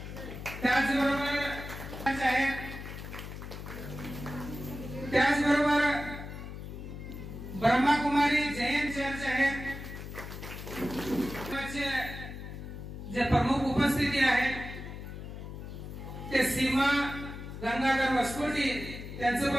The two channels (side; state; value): left; noise; hum, 10 dB below the sound